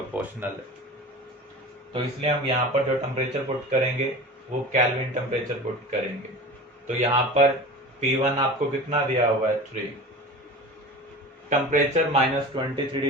है। तो इसलिए हम यहाँ पर जो टेम्परेचर पुट करेंगे वो केल्विन टेम्परेचर पुट करेंगे। तो यहाँ पर P1 आपको कितना दिया हुआ है, 3। टेम्परेचर -23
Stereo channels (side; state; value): both; normal; correlation 0.34